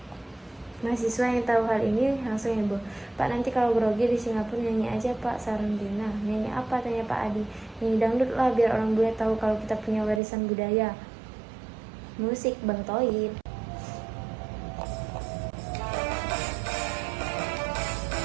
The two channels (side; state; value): left; drops out; at 10.2 s